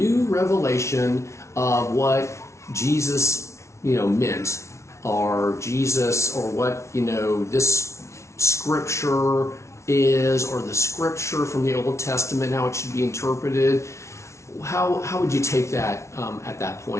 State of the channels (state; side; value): late; right; 0.13 ms